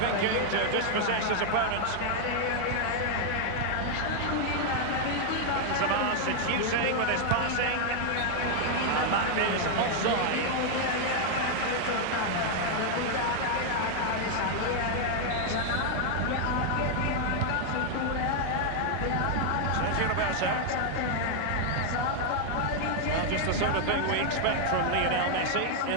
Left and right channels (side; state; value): both; different; correlation 0.00